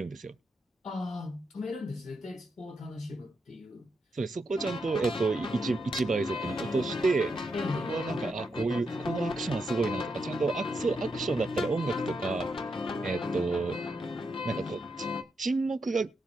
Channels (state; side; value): normal; both; correlation 0.83